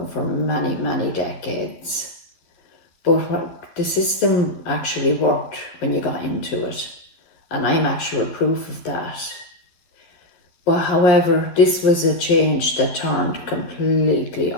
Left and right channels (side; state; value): right; late; 12 ms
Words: for many, many decades. But the system actually worked when you got into it, and I'm actual proof of that. But however, this was a change that turned completely